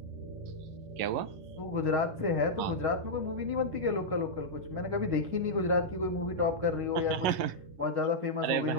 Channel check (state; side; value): late; left; 11 ms